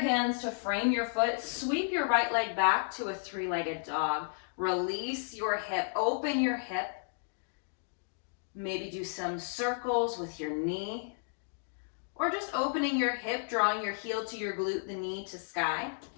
to frame your foot, sweep your right leg back to a three-legged dog. Release your hip, open your hip. Maybe do some circles with your knee, or just opening your hip, drawing your heel to your glute, the knee to sky,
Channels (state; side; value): silent; right; digital silence